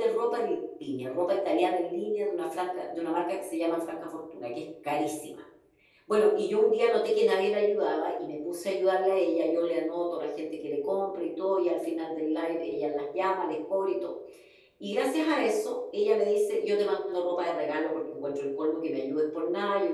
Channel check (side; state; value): both; identical; correlation 1.00